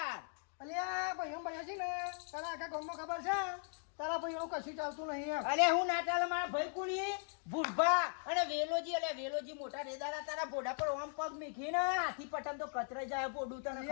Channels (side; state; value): right; silent; 52 dB below the other